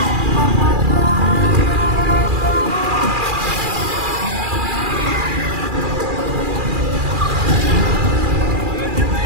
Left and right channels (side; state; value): left; late; 2.4 ms